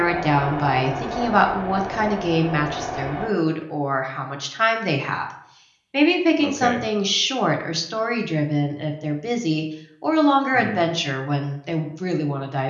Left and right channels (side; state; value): both; identical; correlation 1.00